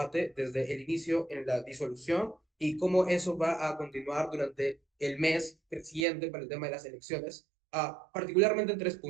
desde el inicio en la disolución y cómo eso va a continuar durante el mes siguiente para el tema de las elecciones, particularmente en tres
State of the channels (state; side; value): drops out; left; at 6.1 s